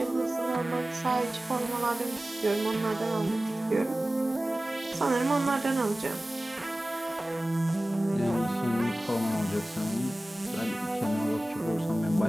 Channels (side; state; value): both; normal; correlation 0.97